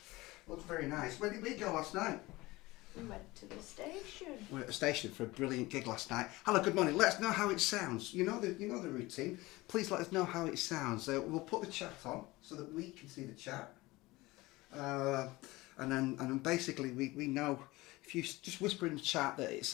Looks very nice. Where did we go last night? We went to the station. We were at the station for a brilliant gig last night. Hello, good morning. Let us know how it sounds. You know the routine. Please let us know how it sounds. We'll put the chat on so that we can see the chat. And then basically we know if you just whisper in the chat that it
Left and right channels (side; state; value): right; quieter; 20.5 dB